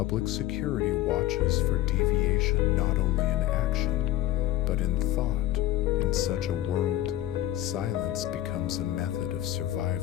security watches for deviation not only in action, but in thought. In such a world, silence becomes a method of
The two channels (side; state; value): right; quieter; 13.7 dB